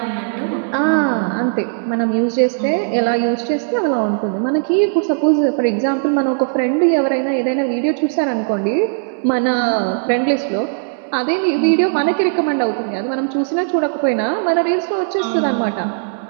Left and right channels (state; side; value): silent; left; digital silence